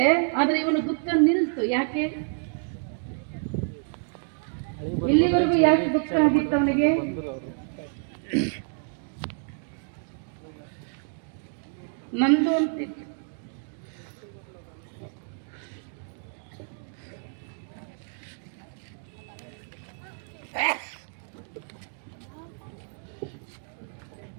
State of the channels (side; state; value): left; silent; 59 dB below the other